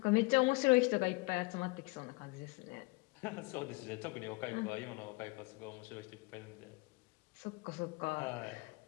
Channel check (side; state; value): right; quieter; 26.0 dB